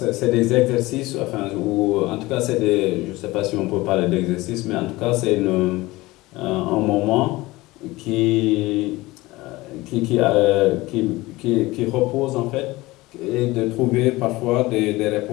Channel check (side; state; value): right; quieter; 20.1 dB